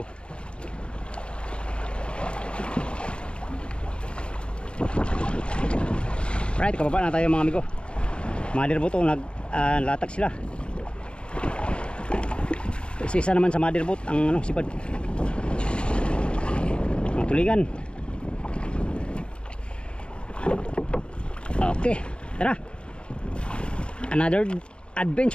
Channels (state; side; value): late; right; 0.056 ms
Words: Right, kababa na tayo mga amigo. Motherboat naglatag sila. Isa naman sa motherboat ang sipad. Ang tulingan. Okay, tara. Another